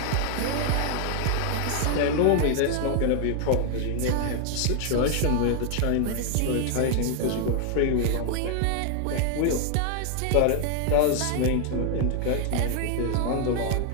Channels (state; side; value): different; both; correlation 0.00